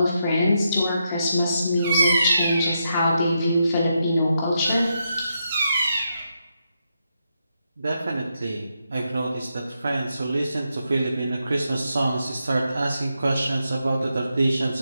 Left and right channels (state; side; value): inverted; both; correlation -0.83